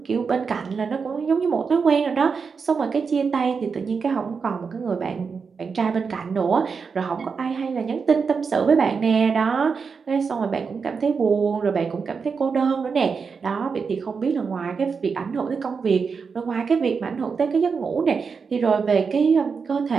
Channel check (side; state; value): left; quieter; 5.5 dB